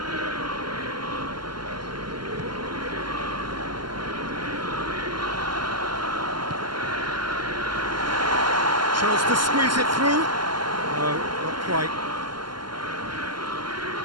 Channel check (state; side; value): late; left; 0.72 ms